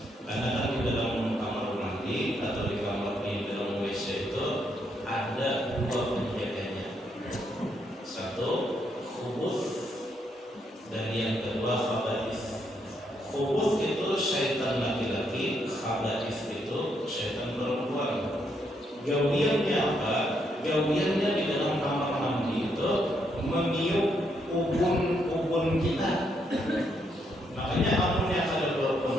Karena kan di dalam kamar mandi atau di kamar di dalam WC itu ada dua penjaganya. Satu khubus dan yang kedua khaba'is. Khubus itu syaitan laki-laki, khaba'is itu syaitan perempuan. Gawiannya apa? Gawiannya di dalam kamar mandi itu meniup ubun kita. Makanya amunnya kalau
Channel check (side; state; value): both; normal; correlation 0.76